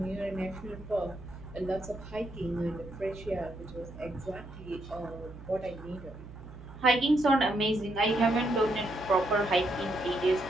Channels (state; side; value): noise; right; hum, 15 dB below the sound